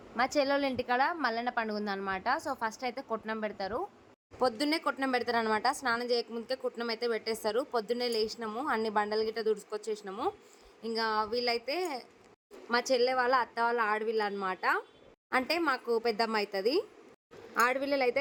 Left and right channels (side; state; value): both; identical; correlation 1.00